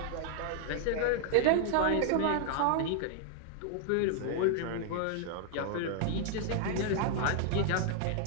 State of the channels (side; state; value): both; different; correlation -0.01